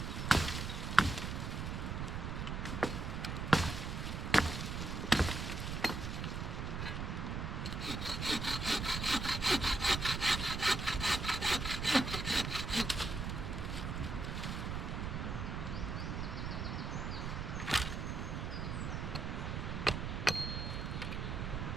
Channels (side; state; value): right; noise; rumble, 3 dB below the sound